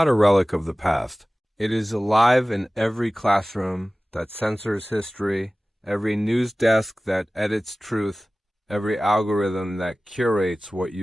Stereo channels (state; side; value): normal; both; correlation 0.98